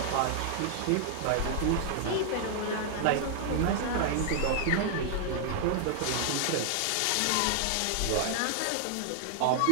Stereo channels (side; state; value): both; different; correlation 0.00